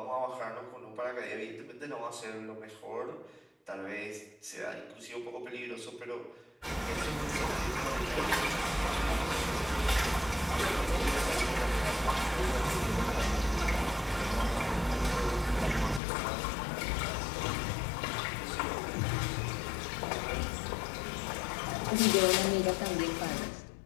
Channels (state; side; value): drops out; right; at 16.0 s